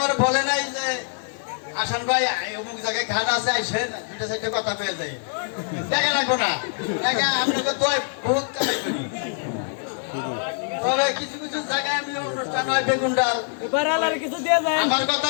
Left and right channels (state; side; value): silent; right; digital silence